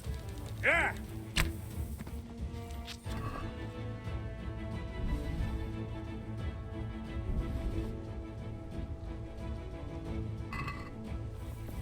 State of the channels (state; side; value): identical; both; correlation 1.00